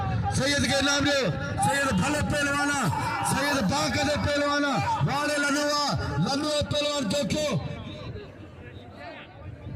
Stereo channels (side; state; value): both; identical; correlation 1.00